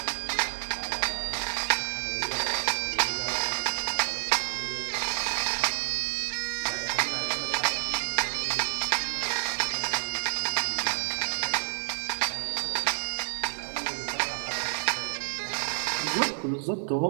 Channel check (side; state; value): left; silent; digital silence